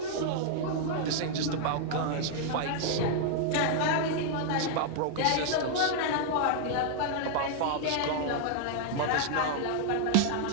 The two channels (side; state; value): both; different; correlation 0.00